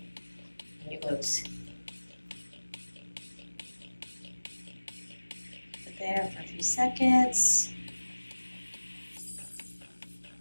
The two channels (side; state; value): both; inverted; correlation -1.00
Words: and your glutes. Put there for a few seconds.